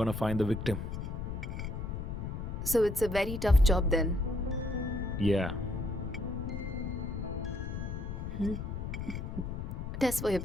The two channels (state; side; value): noise; left; rumble, 5 dB below the sound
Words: find the victim. So it's a very tough job then. Yeah. Test for your